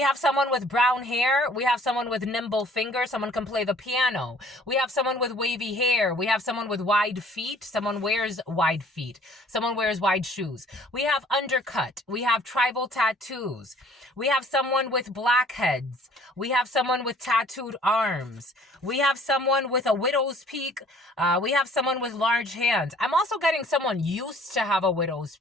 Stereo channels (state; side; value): normal; both; correlation 0.55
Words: someone with brown hair. We have someone with nimble fingers. Someone can play the piano. We have someone with wavy hair. We have someone with wide feet. Someone wears wide feet. Someone wears wide shoes. We have undercut. We have tribal tattoos. We have someone with blackheads. We have someone with tattooed arms. We have someone with a widow's peak. We have someone with large hands. I'm also getting someone used to have a widow's